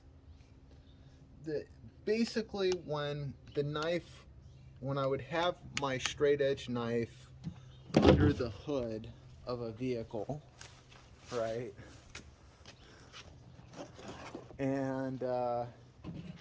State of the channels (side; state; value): both; identical; correlation 1.00